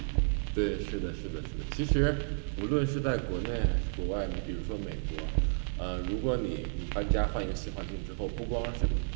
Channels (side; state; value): left; silent; 56 dB below the other